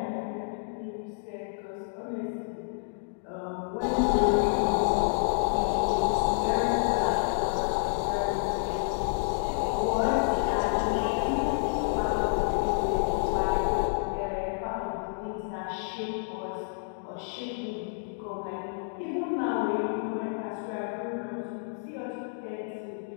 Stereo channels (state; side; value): silent; right; digital silence